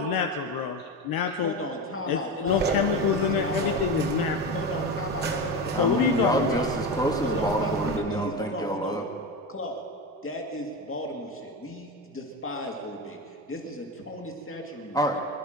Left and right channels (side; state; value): both; normal; correlation 0.20